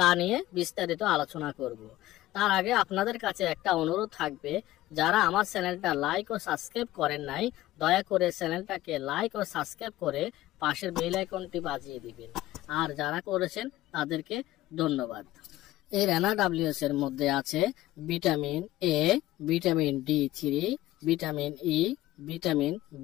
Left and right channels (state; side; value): quieter; right; 15.9 dB